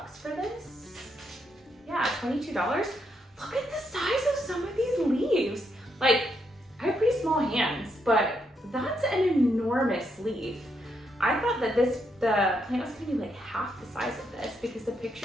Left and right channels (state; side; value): normal; both; correlation 0.78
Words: for this. Yeah, $22. Look at the size of some of these leaves. Like, I have pretty small hands, but that's an enormous leaf. I thought that the plant was gonna be like half the size of this because the